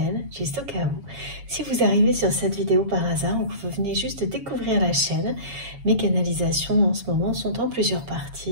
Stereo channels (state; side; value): late; left; 7.1 ms